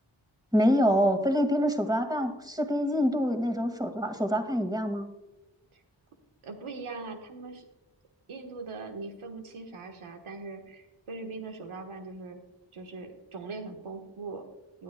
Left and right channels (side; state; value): both; normal; correlation 0.74